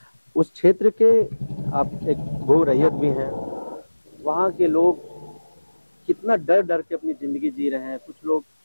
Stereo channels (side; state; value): both; inverted; correlation -1.00